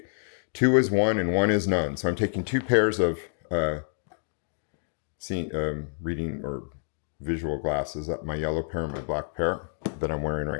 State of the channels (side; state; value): right; silent; 60 dB below the other